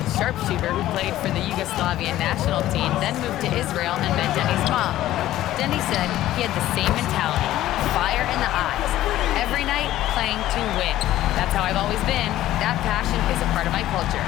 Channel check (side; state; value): right; quieter; 14.2 dB